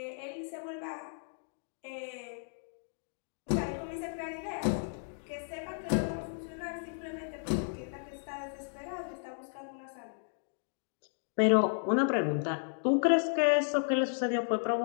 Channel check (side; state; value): right; silent; digital silence